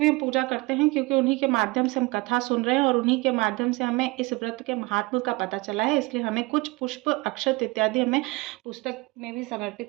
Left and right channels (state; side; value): quieter; left; 23.5 dB